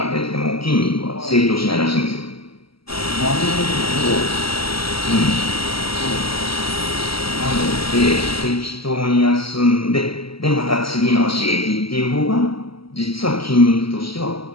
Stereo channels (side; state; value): right; late; 0.75 ms